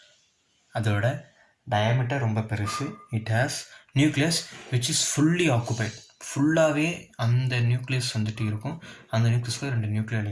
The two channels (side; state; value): both; identical; correlation 1.00